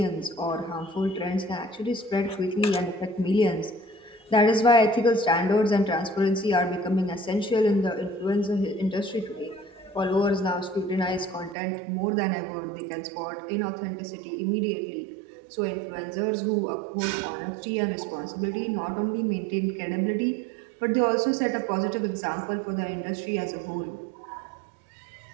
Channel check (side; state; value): left; drops out; at 11.6 s